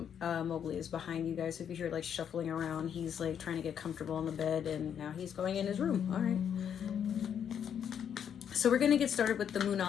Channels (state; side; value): quieter; right; 8.4 dB